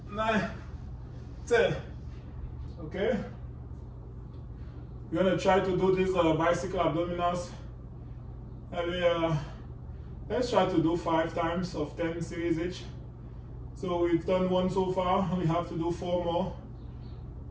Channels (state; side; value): identical; both; correlation 1.00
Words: 9, 10. Okay? We're gonna try to do these bicycle abdominals. And let's try to do 5 times of 10 series each. So we've done 1 so far, and we have to do 4 more.